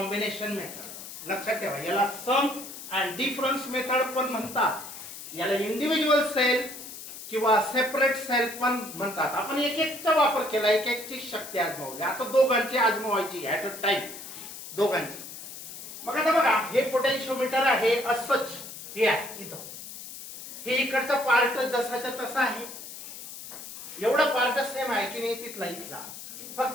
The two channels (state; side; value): noise; left; hiss, 12 dB below the sound